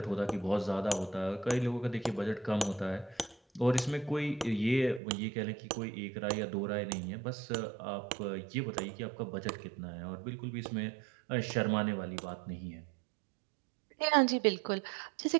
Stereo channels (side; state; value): left; drops out; at 5.0 s